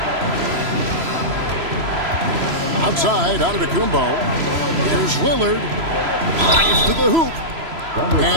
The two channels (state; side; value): late; left; 3.0 ms